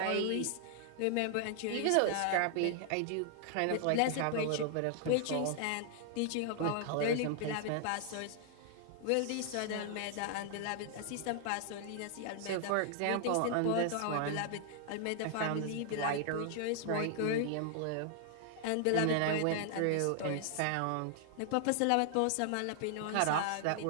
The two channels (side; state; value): both; different; correlation 0.00